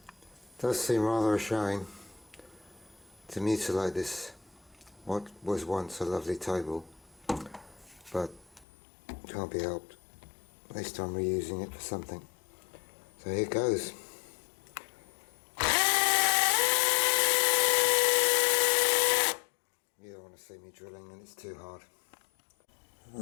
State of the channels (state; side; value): drops out; right; at 8.7 s